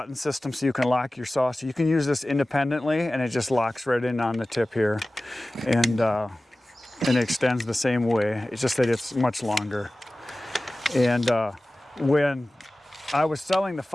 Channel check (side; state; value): both; normal; correlation 0.97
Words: system so you can lock your saw, so you can use this independently, and it just locks right in on the tip here, and it extends the same way. It's just that it's much longer. And when I was selling the